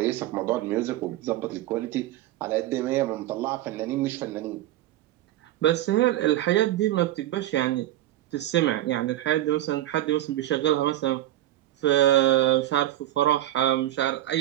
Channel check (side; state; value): left; quieter; 14.2 dB